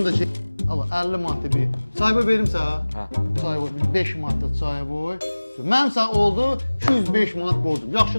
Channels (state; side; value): inverted; both; correlation -1.00